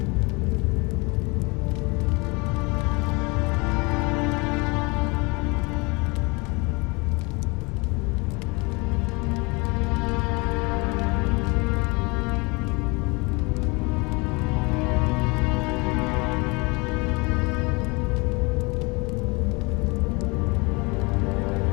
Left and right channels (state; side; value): quieter; right; 27.5 dB